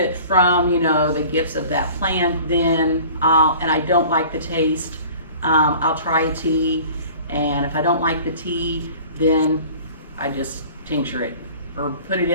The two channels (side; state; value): both; inverted; correlation -0.45